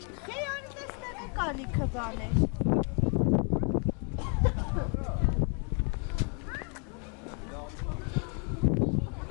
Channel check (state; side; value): quieter; right; 37.8 dB